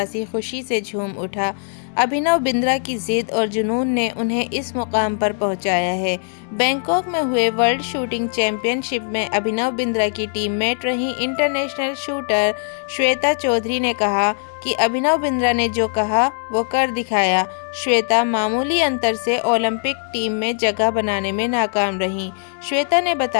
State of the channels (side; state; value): right; silent; 66 dB below the other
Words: खुशी से झूम उठा। अभिनव बिंद्रा की जिद और जुनून ने उन्हें इस मुकाम पर पहुंचाया है। बैंकॉक में हुए वर्ल्ड शूटिंग चैंपियनशिप में अभिनव बिंद्रा की टीममेट रही इंटरनेशनल शूटर श्वेता चौधरी ने कहा कि अभिनव बिंद्रा ने जो कहा वो कर दिखाया। श्वेता मामूली अंतर से ओलंपिक टीम में जगह बनाने में नाकाम रही। श्वेता ने